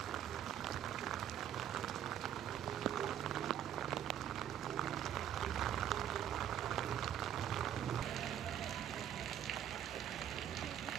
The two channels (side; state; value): left; quieter; 10.2 dB